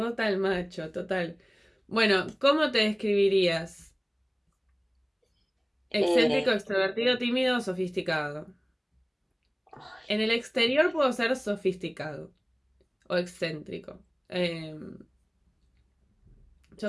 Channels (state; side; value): identical; both; correlation 1.00